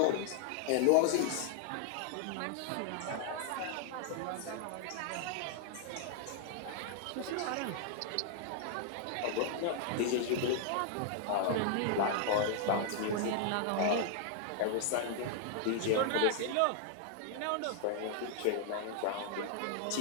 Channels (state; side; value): different; both; correlation 0.00